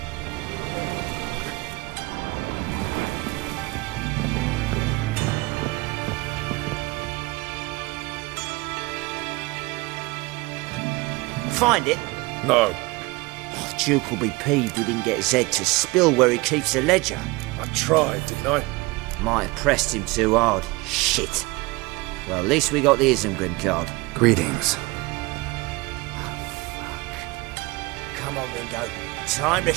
Find it? No. Archduke will be peeved we didn't get Zed to spill where he keeps the ledger. I tried, didn't I? Might have pressed him too hard. Shit. Well, at least we got the Isengrim card. Greetings. Come on, Ringo. Time to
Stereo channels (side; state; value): left; quieter; 23.1 dB